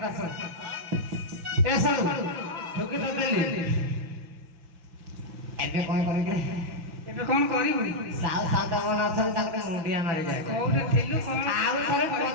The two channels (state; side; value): late; left; 5.9 ms